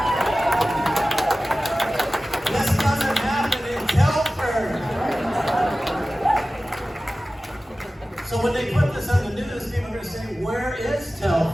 This doesn't happen in Telford. So when they put this on the news, people are going to say, where is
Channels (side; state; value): both; normal; correlation 0.96